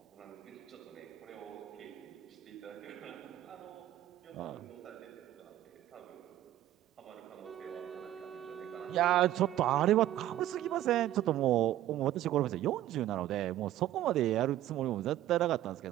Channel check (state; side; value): quieter; left; 13.2 dB